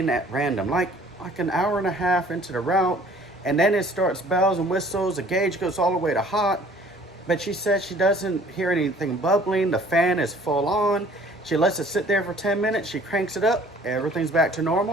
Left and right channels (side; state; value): both; normal; correlation 0.54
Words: at random, like an hour and a half into the route, and then it starts bells and whistles, the gauge goes all the way to hot. But she said she doesn't hear anything bubbling, the fan is full on. She lets it sit there for 10 minutes, she cranks it up, everything's back to